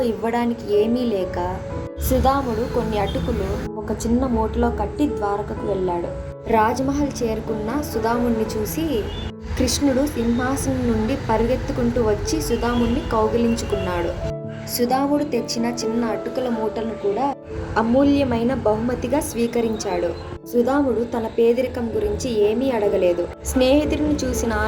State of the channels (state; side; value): identical; both; correlation 1.00